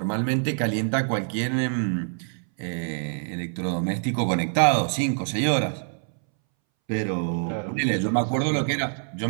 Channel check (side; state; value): left; silent; 61 dB below the other